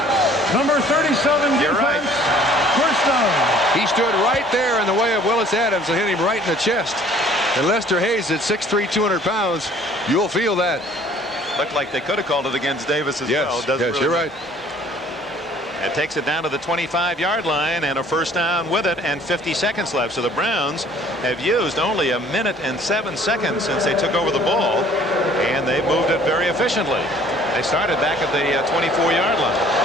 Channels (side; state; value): both; normal; correlation 0.54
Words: Number 37 You're defense. right. First down. He stood right there in the way of Willis Adams and hit him right in the chest. And Lester Hayes at 6'3", 200 pounds. You'll feel that. Looked like they could have called it against Davis as well. Yes, Really you're right. It takes it down to the 25-yard line and a first down with it, and 50 seconds left. So the Browns have used only 1 minute and 7 seconds since they took over the ball, and they've moved it very efficiently. They started back at the 24-yard line.